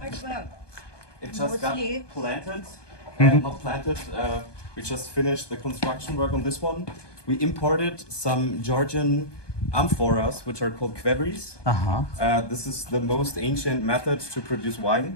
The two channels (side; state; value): right; late; 1.2 ms